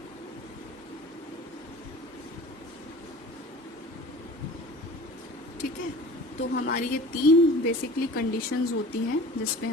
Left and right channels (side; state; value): both; normal; correlation 0.42